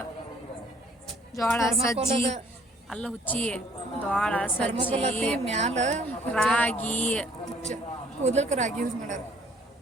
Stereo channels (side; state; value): both; normal; correlation 0.59